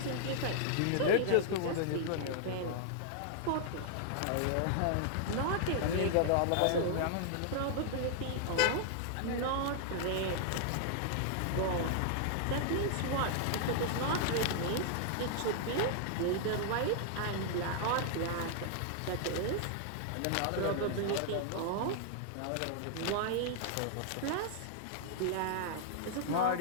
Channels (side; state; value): both; different; correlation -0.01